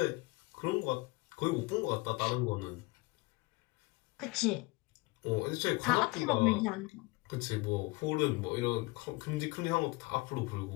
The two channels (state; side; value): quieter; right; 23.8 dB